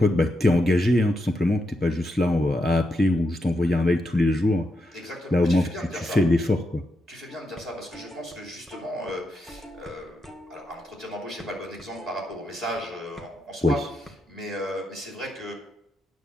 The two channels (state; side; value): normal; both; correlation 0.83